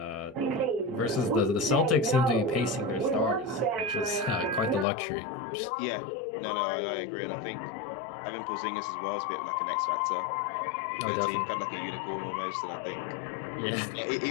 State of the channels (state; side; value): drops out; right; at 4.9 s